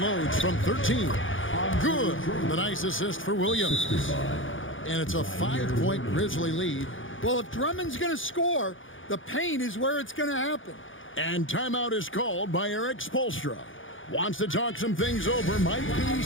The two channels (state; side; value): late; right; 0.57 ms